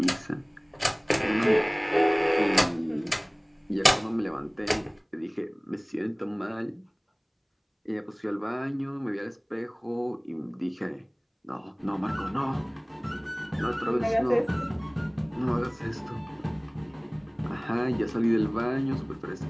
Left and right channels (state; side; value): identical; both; correlation 1.00